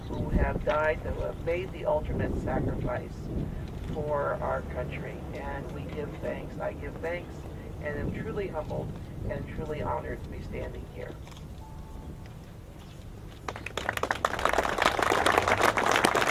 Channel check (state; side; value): identical; both; correlation 1.00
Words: who have died, who have made the ultimate sacrifice for our country. And we give thanks. I give thanks and am truly humbled and truly honored to be standing here.